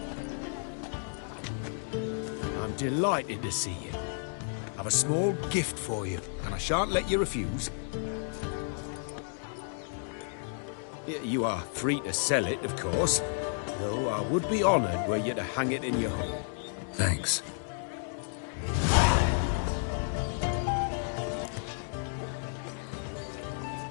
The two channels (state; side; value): silent; right; digital silence